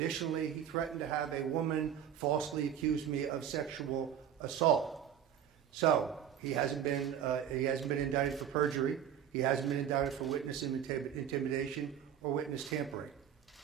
he threatened to have a woman falsely accuse me of sexual assault. So he hasn't been indicted for perjury. He hasn't been indicted for witness intimidation or witness tampering.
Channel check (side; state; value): left; quieter; 9.4 dB